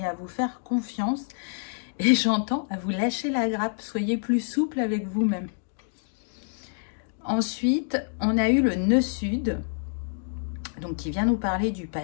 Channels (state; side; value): silent; right; digital silence